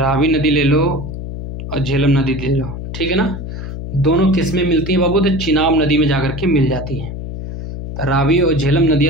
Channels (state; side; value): noise; left; hum, 8 dB below the sound